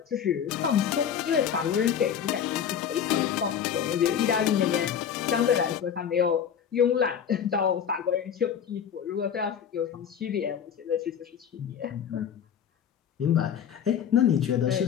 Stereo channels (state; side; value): quieter; right; 8.4 dB